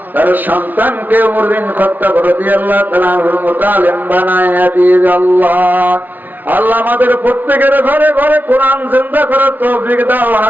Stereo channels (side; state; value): left; late; 0.083 ms